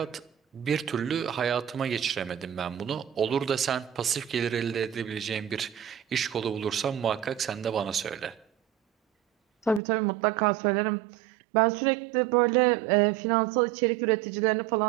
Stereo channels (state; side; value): drops out; left; at 9.8 s